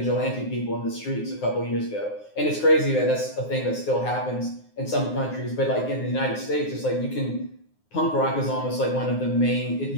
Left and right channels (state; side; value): late; right; 9.6 ms